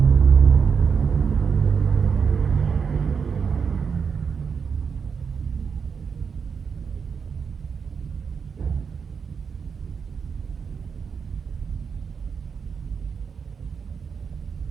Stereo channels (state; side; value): quieter; left; 6.1 dB